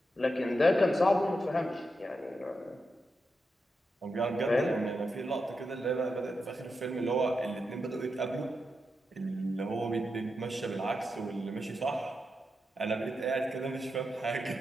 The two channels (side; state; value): both; normal; correlation 0.87